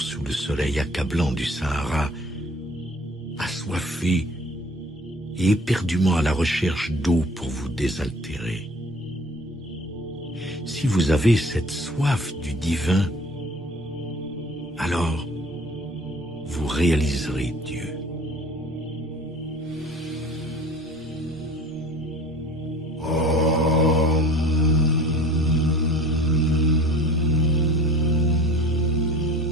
sous le soleil accablant du Sahara, assoiffé et éperdument à la recherche d'eau pour vous désaltérer. Si vous avez cette soif du divin, alors vous réaliserez Dieu.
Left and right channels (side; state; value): both; normal; correlation 0.46